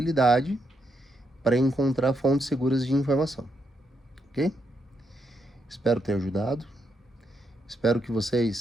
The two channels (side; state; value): both; normal; correlation 0.80